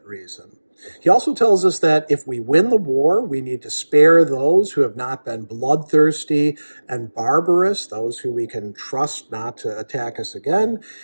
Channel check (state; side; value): inverted; both; correlation -1.00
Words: reason. He also tells us that if we win the war, we need to spare those who have not been bloodthirsty and barbarous, those who we can trust not to attack us again.